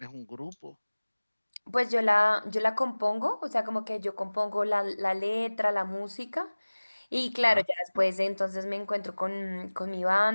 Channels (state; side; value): inverted; both; correlation -1.00